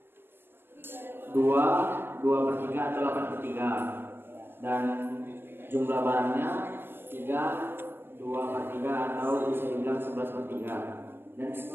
2/3 atau 8/3, dan jumlah barangnya 2/3 atau bisa dibilang 11/3. Dan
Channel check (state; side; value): late; left; 0.10 ms